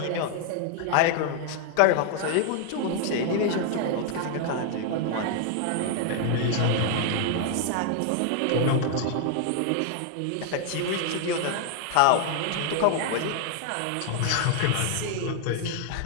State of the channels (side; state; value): both; different; correlation 0.00